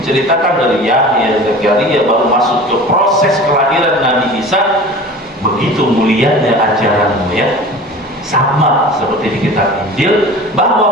dari Yahya, Zakaria baru masuk ke proses kelahiran Nabi Isa. Begitu mulianya ajaranmu ya, sama seperti di kitab Injil,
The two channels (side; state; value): both; normal; correlation 0.38